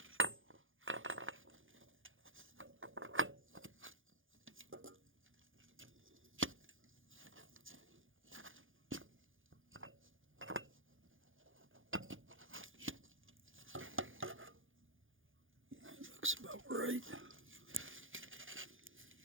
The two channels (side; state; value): left; late; 0.58 ms